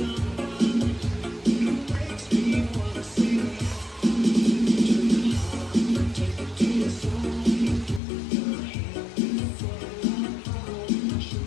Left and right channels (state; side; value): drops out; right; at 8.0 s